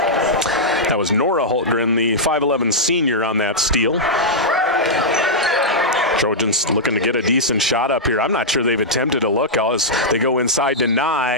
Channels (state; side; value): normal; both; correlation -0.09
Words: That was Nora Hultgren, the 5'11 senior, on that steal. Trojans looking to get a decent shot up here. I'm not sure they've attempted a look as they go inside to